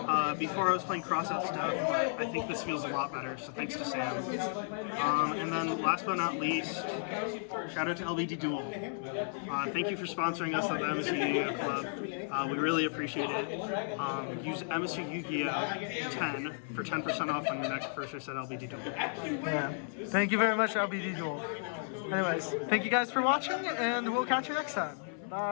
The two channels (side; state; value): right; silent; 55 dB below the other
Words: Before I was playing crossout stuff, but I think this feels a lot better, so thanks to Sam. And then last but not least, shout out to LBD Duel. Thank you for sponsoring us at the MSU YGO Club. We really appreciate it. Use MSU YGO 10 for 10% off on your next purchase at LBD Duel. Yeah. Thank you very much, LBD Duel. Anyways, thank you guys for watching, and we'll catch you next time.